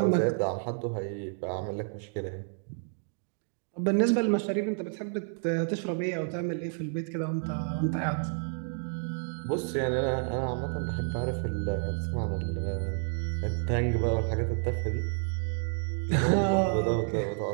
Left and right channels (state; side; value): silent; left; 58 dB below the other